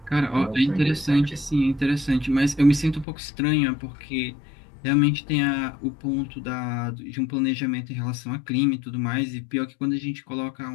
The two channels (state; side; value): drops out; right; at 3.1 s